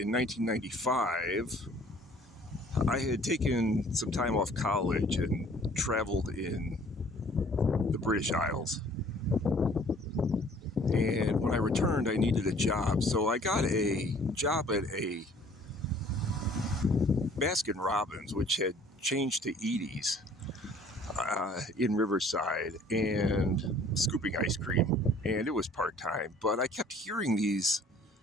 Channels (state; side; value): normal; both; correlation 0.54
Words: 1995. I had taken some time off college and traveled in the British Isles. And when I returned, I needed a job. So I got a job at a Baskin-Robbins, which had changed to Edie's in Riverside, and scooping ice cream. And it was part-time. But I kept hearing these